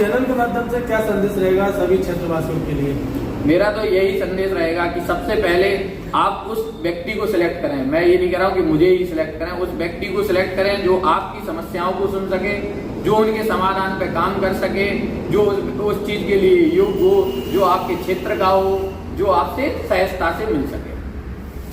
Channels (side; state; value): both; identical; correlation 1.00